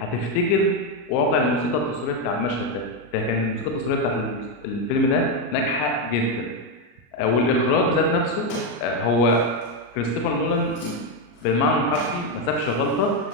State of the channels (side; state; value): right; late; 34 ms